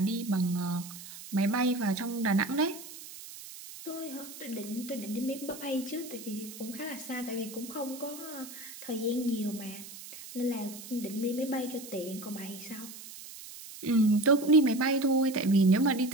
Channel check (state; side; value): noise; right; hiss, 14 dB below the sound